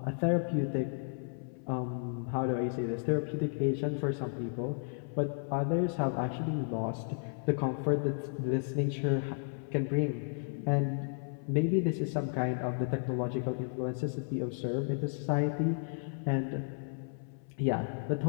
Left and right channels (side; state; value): right; silent; 56 dB below the other